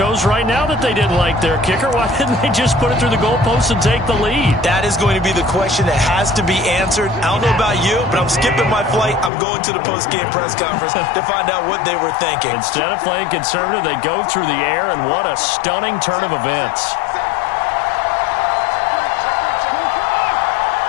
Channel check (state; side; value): drops out; right; at 9.3 s